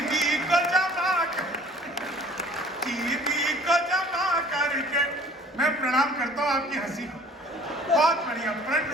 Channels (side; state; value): both; normal; correlation 0.51